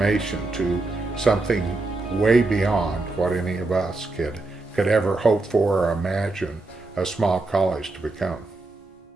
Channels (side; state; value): left; quieter; 3.2 dB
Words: to something way beyond what any of us could ever hope for or imagine a small college to become.